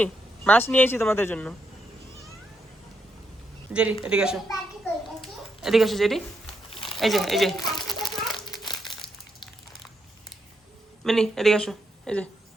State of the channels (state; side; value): normal; both; correlation 0.80